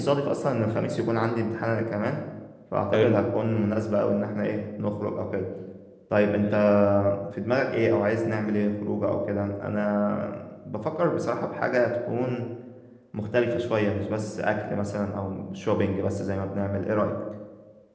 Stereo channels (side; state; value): both; identical; correlation 1.00